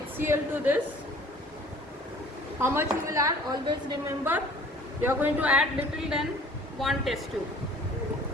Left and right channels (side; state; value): both; normal; correlation 0.50